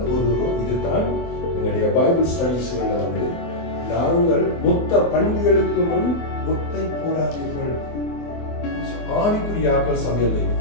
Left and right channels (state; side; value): late; right; 24 ms